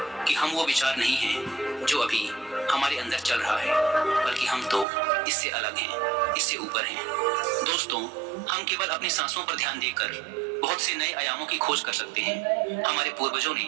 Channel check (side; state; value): left; drops out; at 4.9 s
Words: कि हम वो विचार नहीं हैं जो अभी हमारे अंदर चल रहा है, बल्कि हम तो इससे अलग हैं, इससे ऊपर हैं। दोस्तों, हम केवल अपनी सांसों पर ध्यान देकर बहुत से नए आयामों की खोज कर सकते हैं। हमारे पूर्वजों